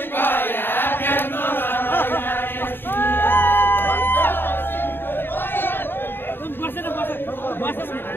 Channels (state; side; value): late; right; 0.10 ms